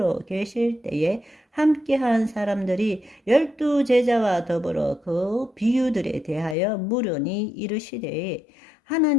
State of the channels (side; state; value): right; drops out; at 6.6 s